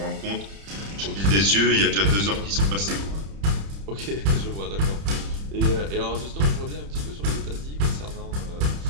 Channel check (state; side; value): late; left; 30 ms